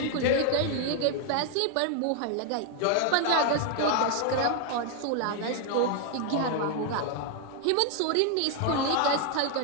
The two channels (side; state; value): both; different; correlation 0.00